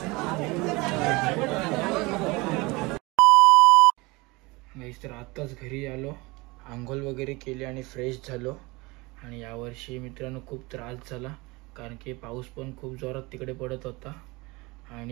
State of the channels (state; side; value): quieter; left; 24.0 dB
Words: तर आत्ताच घरी आलो, आंघोळ वगैरे केली आणि फ्रेश झालो. आणि यावर्षी मित्रांनो खूप त्रास झाला, कारण की पाऊस पण खूप जोरात तिकडे पडत होता